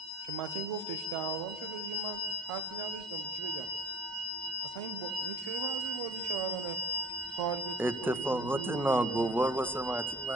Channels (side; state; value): both; normal; correlation 0.47